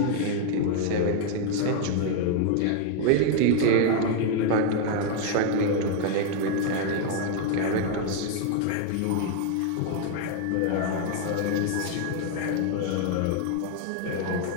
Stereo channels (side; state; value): both; different; correlation 0.00